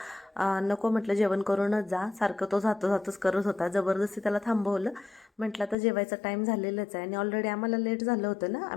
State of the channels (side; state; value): right; drops out; at 5.8 s